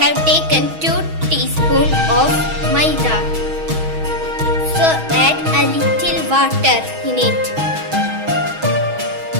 have taken 2 teaspoons of maida. So add a little water in it.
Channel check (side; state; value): left; late; 6.2 ms